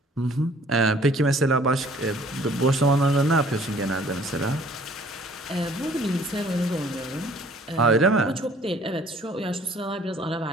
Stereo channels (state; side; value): normal; both; correlation 0.55